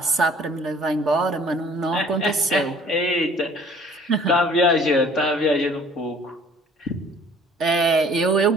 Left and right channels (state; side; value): normal; both; correlation 0.53